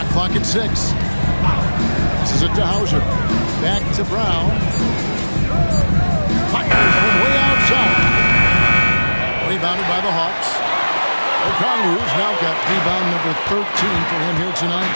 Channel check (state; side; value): inverted; both; correlation -1.00